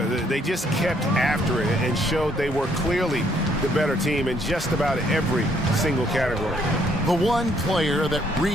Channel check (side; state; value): both; normal; correlation 0.68